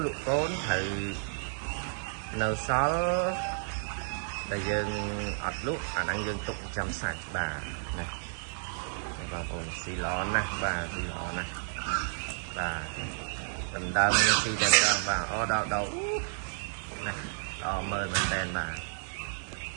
ត្រូវនៅសល់ដែលយើងអត់លក់អាហ្នឹងយើងទុកចាំសាច់បាទណាបងប្អូនស៊ីល្អណាស់បាទស៊ីល្អណាស់បាទដណ្ដើមនេះស៊ីតែដល់បាទអូដល់ណាដល់មើលមែនតែនបាទ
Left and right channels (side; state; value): left; silent; digital silence